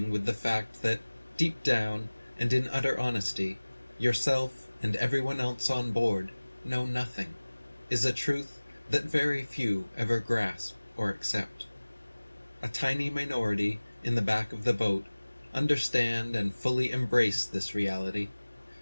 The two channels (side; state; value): both; inverted; correlation -1.00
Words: with the fact that, deep down and in utter honesty, yourself and everyone else on board know nothing is a truth that very few ever grasp or accept. A tiny minority in the back of the boat understand and fully embrace this reality,